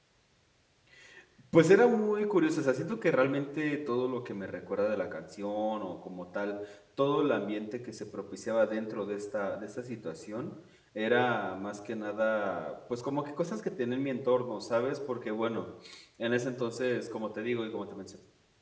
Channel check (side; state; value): both; identical; correlation 1.00